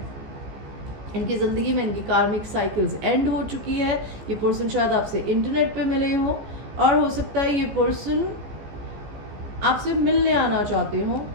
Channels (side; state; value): left; late; 14 ms